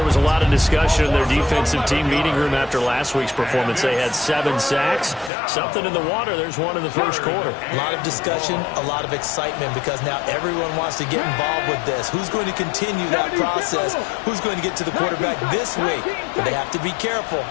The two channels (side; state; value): right; drops out; at 5.3 s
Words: was a lot of discussion in their defensive team meeting room after last week's performance. They had 7 sacks. Something in the water. There's one in the first quarter. A lot of discussion, a lot of excitement, because now everyone wants to get involved with this. Who's going to continue that process? Who's going to get to the quarterback this week? But they have to be careful.